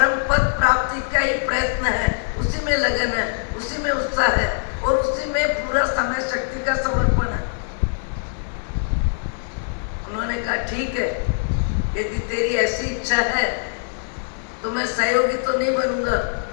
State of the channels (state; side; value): silent; right; 59 dB below the other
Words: पद प्राप्ति का ही प्रयत्न है, उसी में लगन है, उसी में उत्साह है और उसी में पूरा समय शक्ति का समर्पण है। उन्होंने कहा ठीक है, यदि तेरी ऐसी इच्छा है तो मैं सहयोगी तो नहीं बनूंगा,